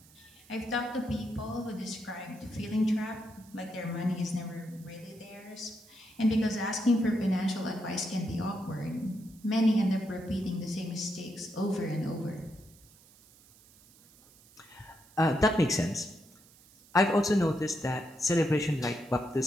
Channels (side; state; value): right; noise; hiss, 26 dB below the sound